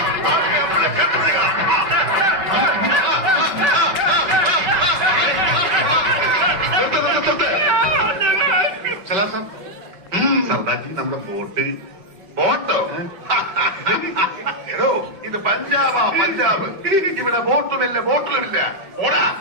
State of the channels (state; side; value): late; left; 5.1 ms